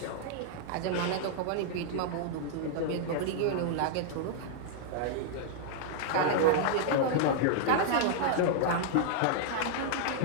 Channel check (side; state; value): both; different; correlation -0.01